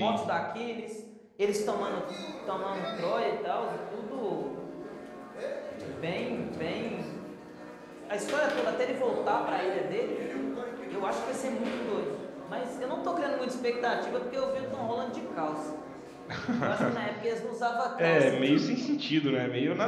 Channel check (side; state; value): both; identical; correlation 1.00